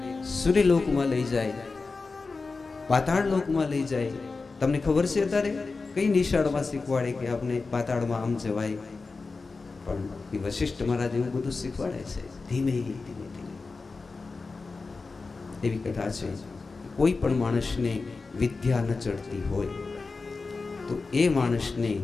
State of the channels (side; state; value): right; quieter; 4.1 dB